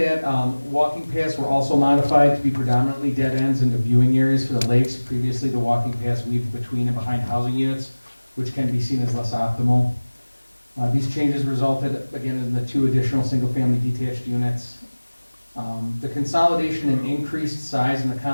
walking paths were also modified to be predominantly dead ends into viewing areas for the lakes. Previously, the walking paths weaved between and behind housing units, which can be seen as less optimal. These changes resulted, again, in the 2 additional single-family detached units. The consolidation and increased size in the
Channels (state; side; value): inverted; both; correlation -1.00